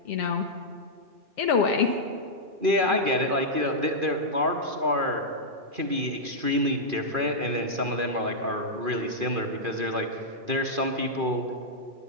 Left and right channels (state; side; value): late; left; 2.4 ms